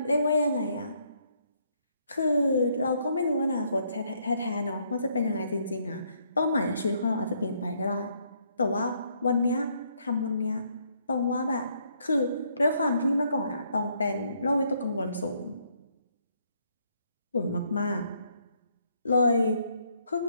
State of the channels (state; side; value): inverted; both; correlation -0.71